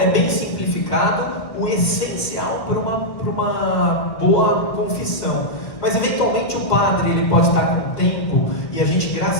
bem simplificado, o essencial para uma boa confissão. Mas eventualmente o padre, ele pode estar com tempo, e a gente,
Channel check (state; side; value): late; right; 1.8 ms